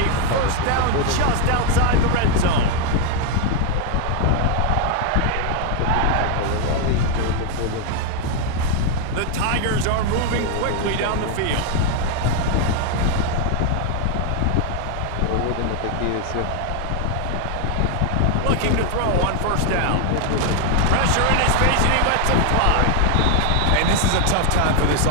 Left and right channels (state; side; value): different; both; correlation 0.01